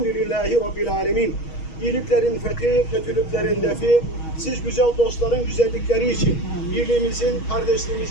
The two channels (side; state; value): right; late; 6.3 ms